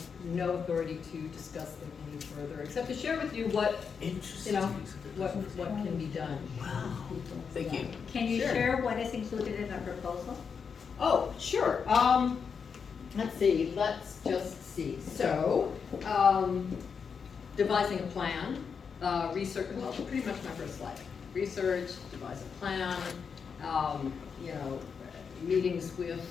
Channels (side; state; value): right; quieter; 6.2 dB